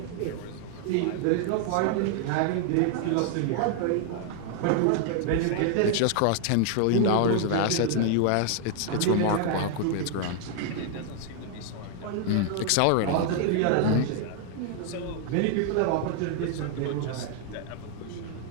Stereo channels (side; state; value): both; different; correlation 0.00